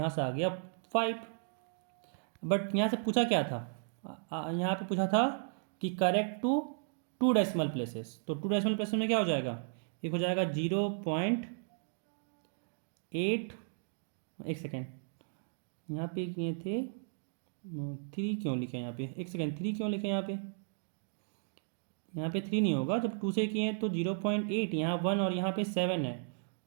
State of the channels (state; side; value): silent; left; digital silence